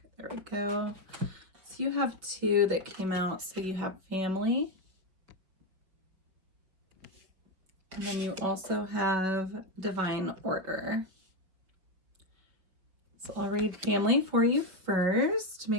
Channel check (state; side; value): late; left; 5.3 ms